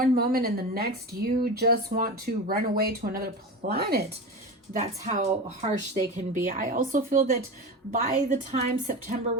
moment, and the next you just want to run away to another planet. That's how harsh they can be. I also feel that by the time September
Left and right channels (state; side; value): normal; both; correlation 0.26